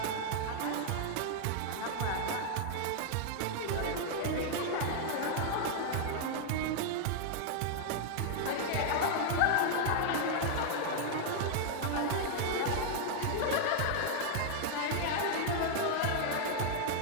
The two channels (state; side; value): different; both; correlation 0.00